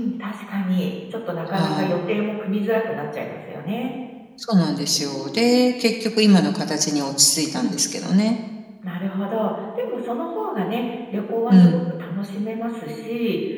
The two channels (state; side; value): identical; both; correlation 1.00